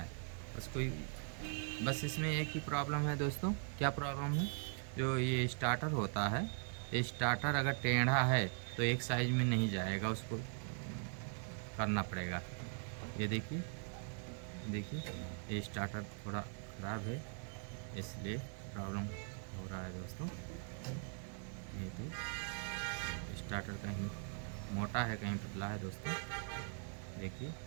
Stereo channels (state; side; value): silent; left; 50 dB below the other